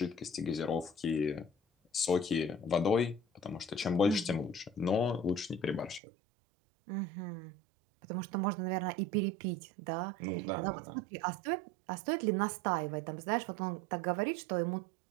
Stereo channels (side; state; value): left; drops out; at 6.0 s